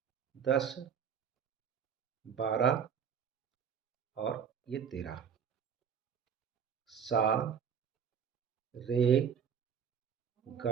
10 12 और ये 13। सा, रे,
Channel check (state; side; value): quieter; left; 7.4 dB